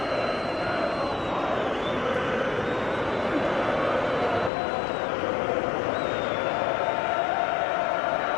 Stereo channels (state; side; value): drops out; right; at 4.5 s